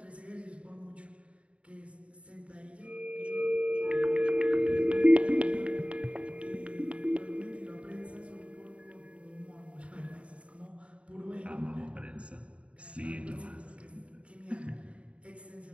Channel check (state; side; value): late; left; 0.062 ms